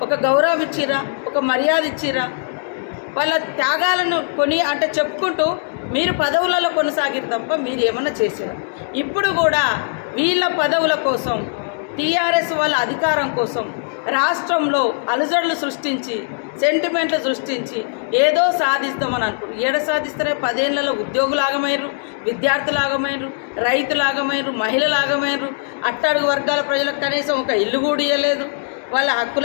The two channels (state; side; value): silent; right; digital silence